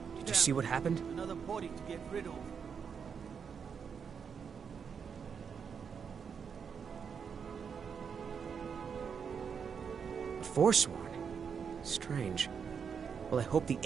Did you see what happened? Another body to get rid of. Forsworn? Strange. Well, I hope the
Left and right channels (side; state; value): left; quieter; 6.6 dB